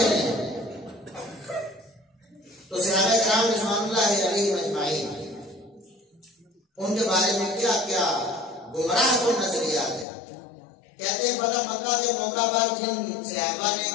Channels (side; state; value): right; drops out; at 10.1 s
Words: انہیں۔ تو صحابہ کرام رضوان اللہ علیہم اجمعین ان کے بارے میں کیا کیا گمراہ کن نظریات ہیں۔ کہتے ہیں فتح مکہ کے موقع پر جن صحابہ نے